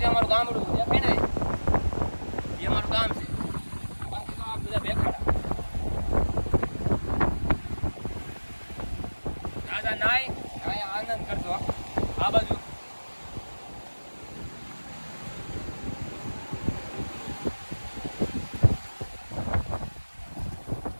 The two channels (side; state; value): both; inverted; correlation -1.00